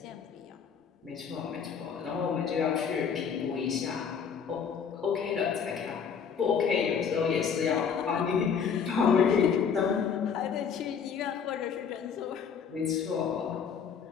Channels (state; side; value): quieter; right; 6.8 dB